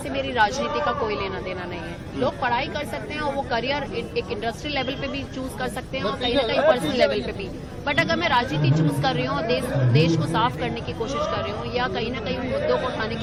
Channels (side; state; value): both; identical; correlation 1.00